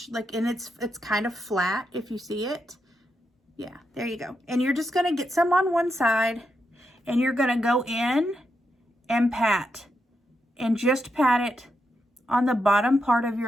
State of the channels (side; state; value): both; normal; correlation 0.83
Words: and it's kind of flat if you see it. Yeah, there you go. And you're just gonna get some on one side, and you're gonna go in and pat, and just pat it on the bottom part of